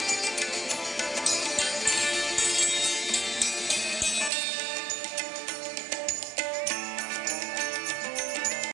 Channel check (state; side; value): drops out; left; at 4.3 s